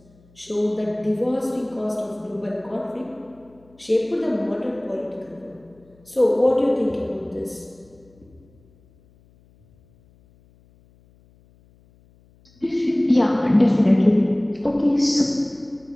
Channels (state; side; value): noise; left; hum, 30 dB below the sound